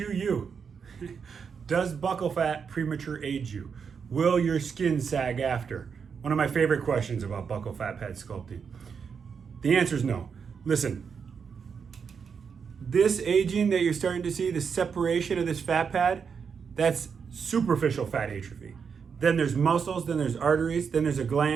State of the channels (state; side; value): quieter; left; 6.3 dB